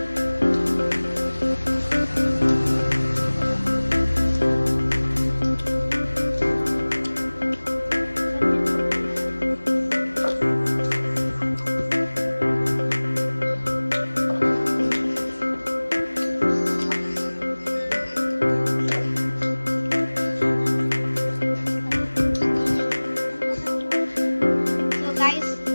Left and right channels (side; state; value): both; inverted; correlation -1.00